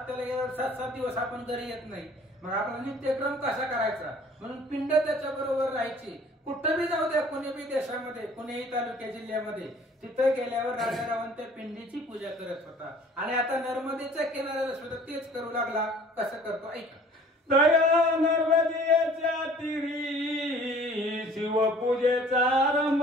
गेल्यावर 7-7 दिवस आपण घरी येत नाही, मग आपला नित्यक्रम कसा करायचा म्हणून पिंड त्याच्या बरोबर राहायची. कुठं बी जाऊ द्या, कोणी बी देशामध्ये कोणीही तालुक्या जिल्ह्यामध्ये, तिथं गेल्यावर राजा रावण त्या पिंडीची पूजा करत होता. आणि आता नर्मदेच्या किनाऱ्याला सुद्धा तेच करू लागला. कसं करतो ऐका. दया नर्मदेच्या तिरी शिवपूजेचा आरंभ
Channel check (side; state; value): both; normal; correlation 0.52